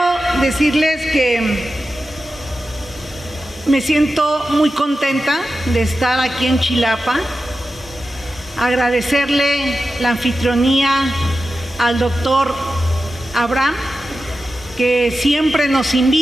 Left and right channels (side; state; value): both; normal; correlation 0.92